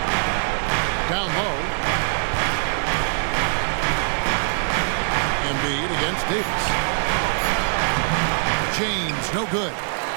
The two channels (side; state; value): left; silent; 64 dB below the other